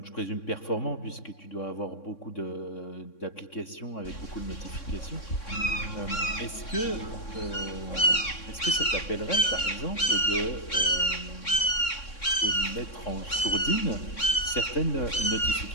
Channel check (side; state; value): right; late; 3.6 ms